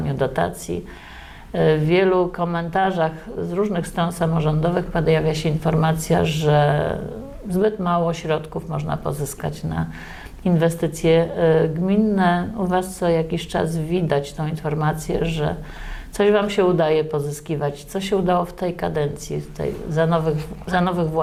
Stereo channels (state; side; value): identical; both; correlation 1.00